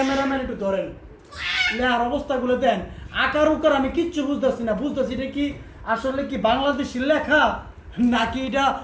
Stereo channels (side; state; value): both; identical; correlation 1.00